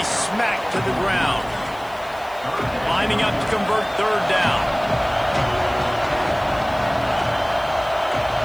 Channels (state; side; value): noise; left; hiss, 24 dB below the sound